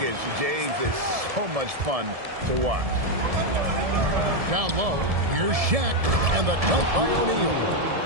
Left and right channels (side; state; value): left; late; 1.7 ms